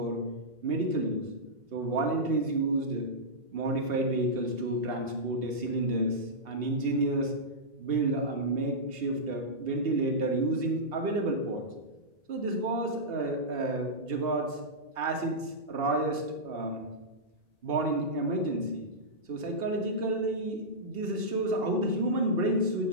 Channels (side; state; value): left; late; 2.8 ms